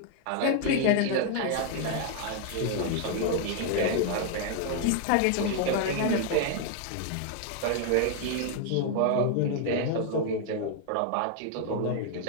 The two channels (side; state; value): both; different; correlation 0.00